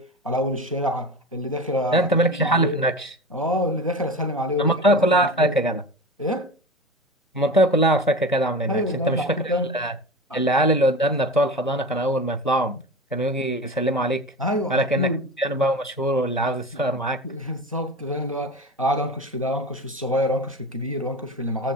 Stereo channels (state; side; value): normal; both; correlation 0.31